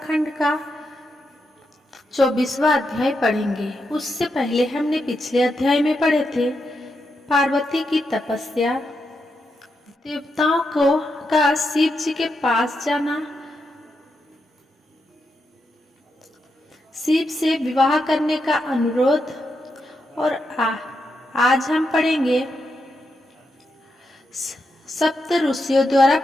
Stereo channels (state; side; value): normal; both; correlation 0.84